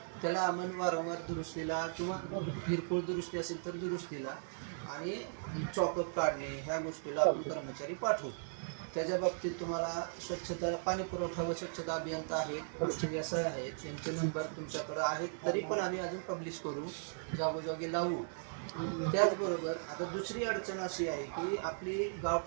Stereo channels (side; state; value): left; silent; digital silence